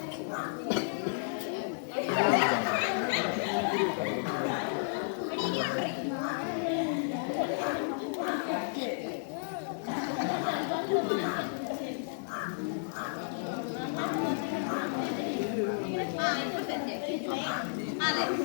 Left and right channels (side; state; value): right; silent; digital silence